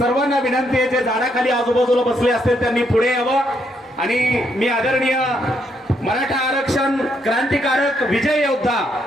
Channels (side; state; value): both; normal; correlation 0.75